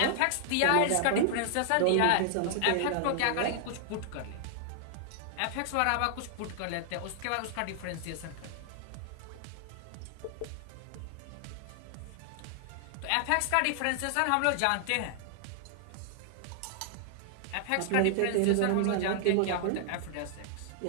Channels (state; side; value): different; both; correlation -0.01